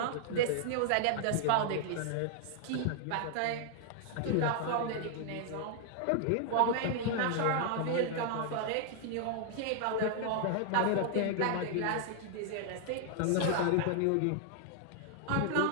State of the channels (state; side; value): different; both; correlation 0.00